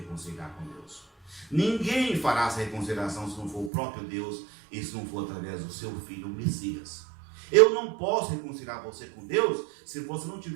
com Deus. Ninguém fará essa reconciliação se não for o próprio Deus e se não for através do seu filho, o Messias. Eu não posso reconciliar você com Deus se você não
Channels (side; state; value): left; drops out; at 3.7 s